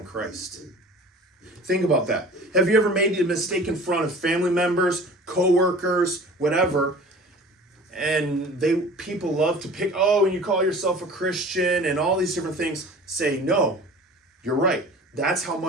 Christ. Think about that. Have you ever made a mistake in front of family members, co-workers, whatever, and people love to pick, and you call yourself a Christian and all these different things. Say, no, you're right. That's how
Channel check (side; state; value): both; normal; correlation 0.42